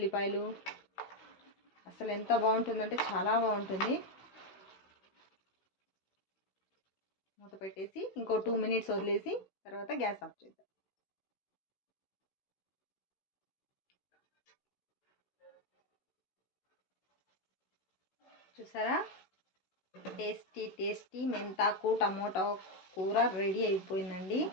అసలు ఎంత బాగుంటుందంటే చాలా బాగుంటుంది. మూత పెట్టేసి ఇంకో 2 మినిట్స్ వదిలేసి తర్వాత గ్యాస్ ఆఫ్ చేద్దాం. చూసారా, టేస్టీ టేస్టీ మెంతాకు టమోటా కూర రెడీ అయిపోయిందండి.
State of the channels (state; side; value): late; right; 16 ms